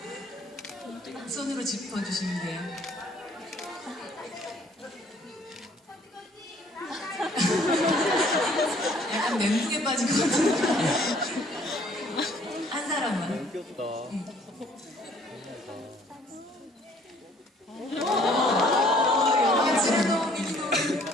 손으로 짚어주시면 돼요. 약간 멘붕에 빠진 것 같은데. 한 사람만. 귀엽다.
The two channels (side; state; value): both; normal; correlation 0.60